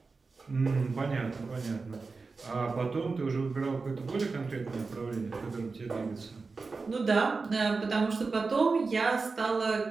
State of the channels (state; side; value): quieter; left; 4.2 dB